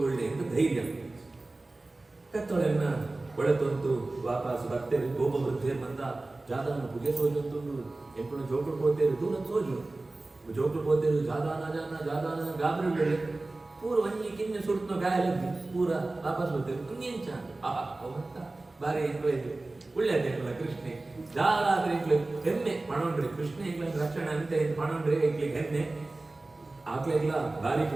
ಎಂದು ಧೈರ್ಯ ಕತ್ತೊಳೆನ್ನ ಒಳತೊಂದು ವಾಪಸ್ ಬರ್ತೇವೆ ಗೋಪ ವೃದ್ಧೇರ್ ಬಂದ ಜಾದಾನ ಪುಗೆ ಸೋಜಂತು ಎಂಪುನ ಜೋಕುಳು ಪೋತೇರು ದೂರ ಸೋಜು ಜೋಕುಳು ಪೋತೇರು ಜಾದಾನ ಗಾಬರಿ ಬೆಳೆ ಪೂರ ಒಂಜಿ ಕಿನ್ನೆ ಸುಡ್ತೋ ಗಾಯಲದ್ದಿ ಪೂರ ವಾಪಸ್ ಬರ್ತೇವೆ ಕುಂಜೆಂಚ ಅವಂತ ಬಾರಿ ಎಂಕ್ಲೆ ಒಳ್ಳೆಯದೇ ಎಂಕ್ಲ ಕೃಷ್ಣೆ ಜಾಲಾದ್ರೆ ಎಂಕ್ಲೆ ಹೆಮ್ಮೆ ಪಣೊಂಡ್ರಿ ಕೃಷ್ಣ ಎಂಕ್ಲ ರಕ್ಷಣೆ ಅಂತ ಪಣೊಂಡ್ರಿ ಎಂಕ್ಲಿಗೆ ಹೆಮ್ಮೆ ಆಕ್ಲೆಗ್ಲ ಭಾರಿ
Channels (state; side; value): quieter; left; 3.0 dB